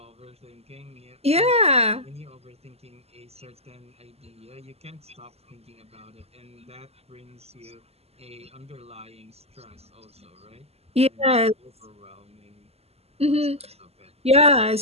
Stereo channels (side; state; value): left; late; 0.29 ms